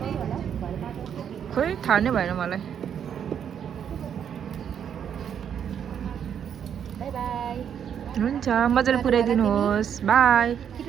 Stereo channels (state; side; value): quieter; left; 8.5 dB